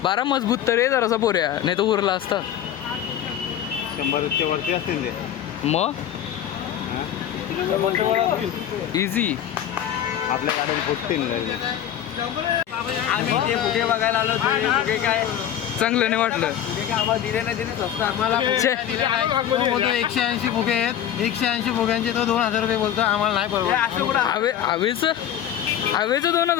12 मजबूत तर आहे जरासा पोऱ्या, नाही तर उरला असता. 100 वरती असतील ते. मग इझी. आपल्या गाडीत फुटतील. आम्ही ते फुगे बघायला आलो. फुगे काय चांगलं नाही वाटलं. आम्हाला दिले नाही स्वस्त. आम्हाला 180 फुगे आहेत. 180 फुग्यांचे तो 2000 रुपये बोलतो. आम्हाला नाही परवडत. हवेचं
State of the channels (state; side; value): quieter; right; 10.4 dB